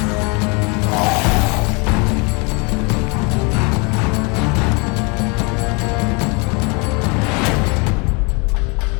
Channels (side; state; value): right; quieter; 31.1 dB